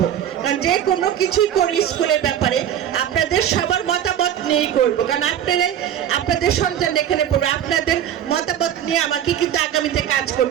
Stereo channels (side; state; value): left; quieter; 10.2 dB